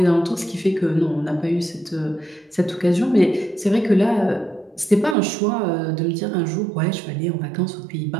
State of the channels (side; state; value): left; drops out; at 5.2 s